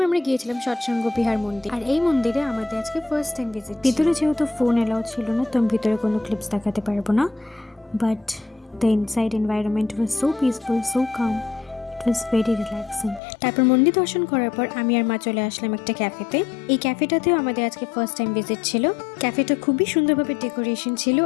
আমরা গিয়েছিলাম সৎসঙ্গ বিহার মন্দির, আর এই মন্দিরে আমাদের আজকে ফার্স্ট টাইম ভিজিট। ভিতরে যেহেতু ফোন অ্যালাউড ছিল না, তো আমি ভিতরে কোনো ক্লিপস দেখাতে পারবো না, but the inside environment was so peaceful, so calm, it was very relaxing. তারপর মন্দির দর্শন করার পর আমি আর মা চলে আসলাম একটা ক্যাফেতে। এই ক্যাফেটাতেও আমাদের আজকে ফার্স্ট টাইম ভিজিট ছিল। ক্যাফেটা খুবই সুন্দরভাবে ডেকোরেশন ছিল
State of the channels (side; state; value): right; drops out; at 13.2 s